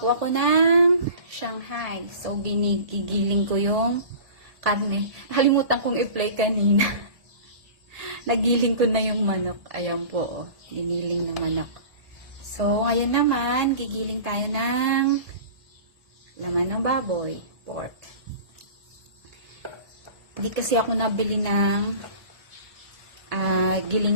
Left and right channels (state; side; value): late; left; 1.7 ms